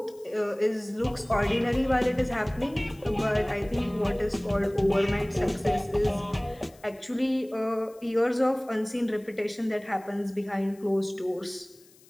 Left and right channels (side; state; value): left; noise; hiss, 27 dB below the sound